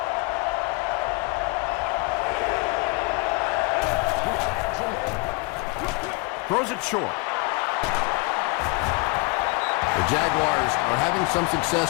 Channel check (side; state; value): right; quieter; 26.6 dB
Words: Throws it short. The Jaguars are having some